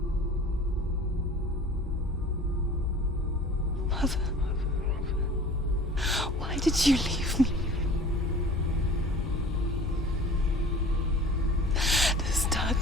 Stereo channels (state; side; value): normal; both; correlation 0.43